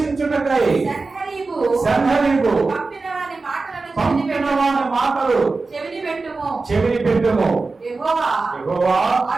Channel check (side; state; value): left; quieter; 3.8 dB